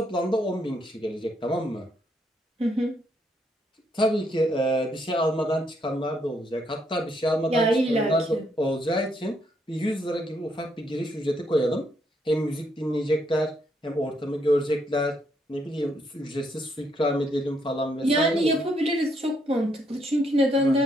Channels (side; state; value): both; normal; correlation 0.74